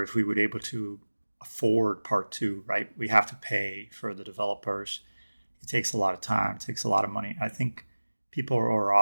if we would be able to afford Part 2, right? We have to pay for the developers. It takes a lot of time, it takes a lot of money. I think people are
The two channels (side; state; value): both; inverted; correlation -1.00